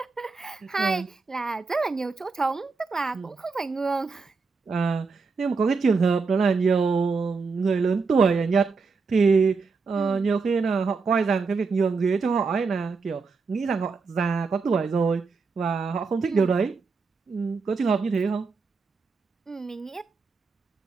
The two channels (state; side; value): quieter; left; 4.6 dB